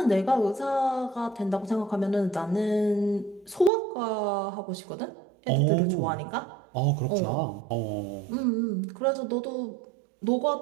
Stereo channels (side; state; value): left; drops out; at 3.7 s